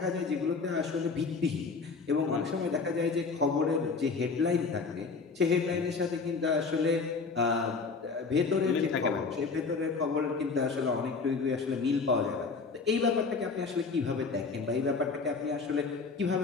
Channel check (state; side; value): quieter; right; 4.6 dB